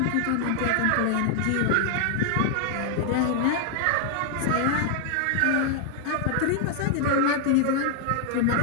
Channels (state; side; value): different; both; correlation 0.00